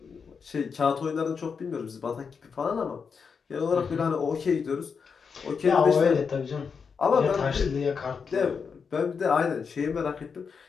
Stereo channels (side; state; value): right; quieter; 5.8 dB